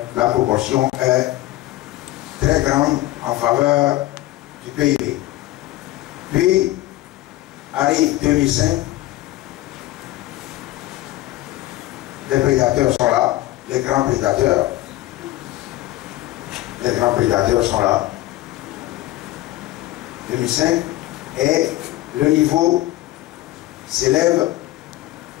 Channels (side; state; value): right; quieter; 16.4 dB